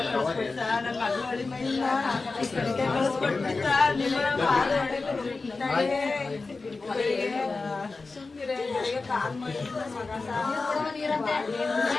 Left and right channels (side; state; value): right; quieter; 3.9 dB